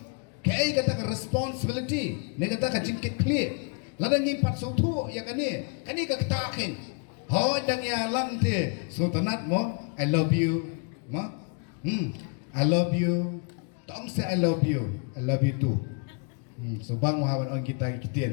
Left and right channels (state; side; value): quieter; right; 36.5 dB